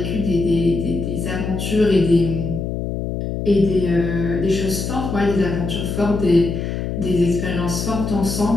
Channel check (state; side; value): noise; left; hum, 4 dB below the sound